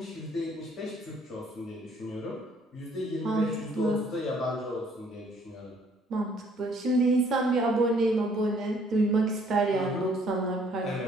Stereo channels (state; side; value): normal; both; correlation 0.62